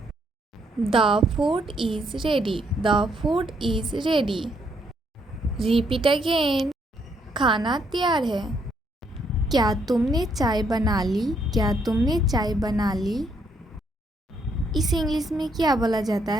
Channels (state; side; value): normal; both; correlation 0.72